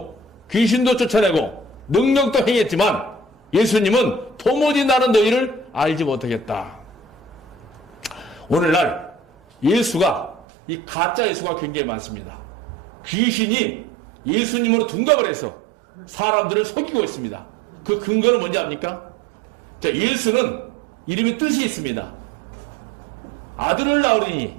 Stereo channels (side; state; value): left; drops out; at 10.4 s